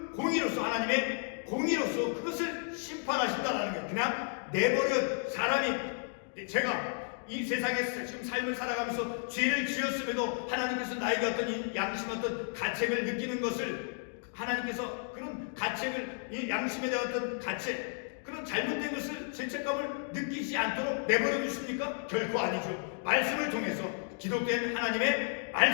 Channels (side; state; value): right; silent; 56 dB below the other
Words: 공의로서, 하나님의 공의로서 그것을 심판하신다라는 거예요. 그냥 내버려 사람이, 제가 이 세상에서 지금 삶을 살아가면서 죄를 지었음에도 하나님께서 나에게 어떤 양심, 어떤 가책을 느끼는 것을, 하나님께서 그런 가책을, 이 양심에 대한 어떤 가책, 그런 잘못된 것을, 죄책감을 느끼지 않도록 내버려 두십니까? 결코 아니죠. 말씀을 통해서, 기록된 하나님의